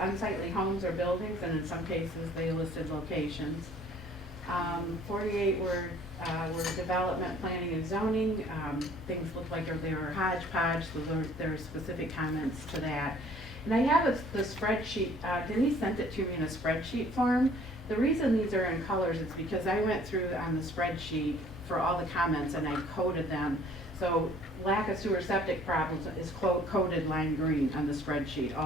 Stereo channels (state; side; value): normal; both; correlation 0.55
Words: homes or buildings, and in some cases they listed locations. 48 were development, planning, and zoning. Things looked like they were hodgepodge, so there are specific comments to that. And I have the spreadsheet, Denise sent it to me in a spreadsheet form. The reason these are in colors is because I went through on the spreadsheet for all the comments and I coded them. So lack of sewer septic problems is coded lime green on the spreadsheet,